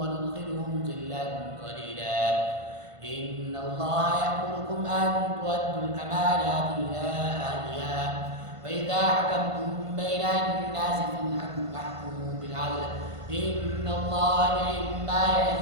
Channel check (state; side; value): late; left; 1.5 ms